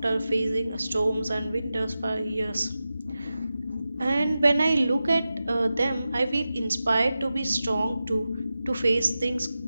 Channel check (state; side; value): inverted; both; correlation -0.93